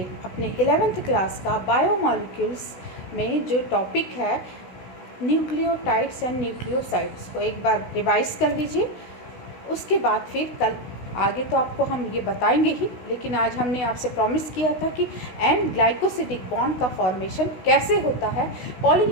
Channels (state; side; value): late; right; 16 ms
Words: अपने 11th क्लास का बायोमॉलिक्यूल्स में जो टॉपिक है न्यूक्लियोटाइड्स एंड न्यूक्लियोसाइड्स को एक बार रिवाइज कर लीजिए। उसके बाद फिर कल आगे तो आपको हम ये बताएंगे ही, लेकिन आज हमने आपसे प्रॉमिस किया था कि एंड ग्लाइकोसिडिक बॉन्ड का फॉर्मेशन कैसे होता है,